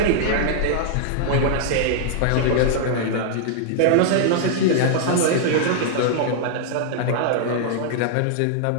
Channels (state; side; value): different; both; correlation -0.01